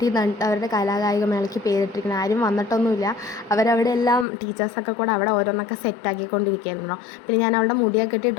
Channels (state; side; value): drops out; right; at 4.2 s